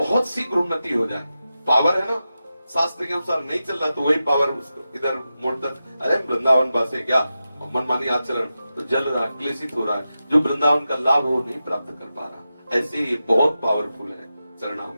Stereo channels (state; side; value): inverted; both; correlation -0.92